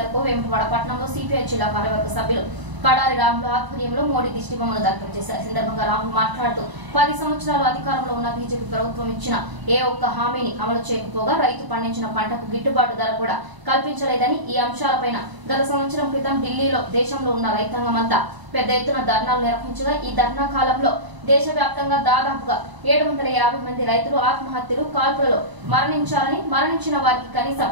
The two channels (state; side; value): late; left; 1.0 ms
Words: వేములవాడ పట్టణంలో సిపిఐ జిల్లా కార్యవర్గ సభ్యులు కడారి రాముల ఆధ్వర్యంలో మోడీ దిష్టిబొమ్మను దగ్ధం చేశారు. సందర్భంగా రాములు మాట్లాడుతూ 10 సంవత్సరాలు అధికారంలో ఉన్న బీజేపీ ప్రభుత్వం ఇచ్చిన ఏ ఒక్క హామీని అమలు చేయకపోగా రైతు పండించిన పంటకు గిట్టుబాటు ధర కూడా కల్పించలేదని, ఈ అంశాలపైన గత సంవత్సరం క్రితం ఢిల్లీలో దేశంలో ఉన్న రైతాంగం అంతా పెద్ద ఎత్తున ధర్నాలు నిర్వహించగా ఈ ధర్నా కాలంలో దేశవ్యాప్తంగా దాదాపుగా 750 మంది రైతులు ఆత్మహత్యలు, కాల్పులలో మరణించారని, మరణించిన వారికి కనీసం